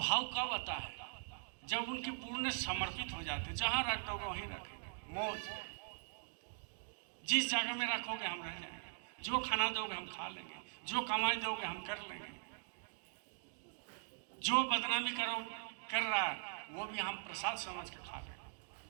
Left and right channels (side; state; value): left; silent; digital silence